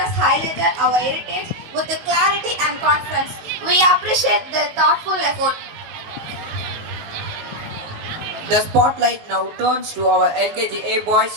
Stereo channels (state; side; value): late; left; 19 ms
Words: highlighted our heritage with clarity and confidence. We appreciate their thoughtful effort. The spotlight now turns to our LKGA boys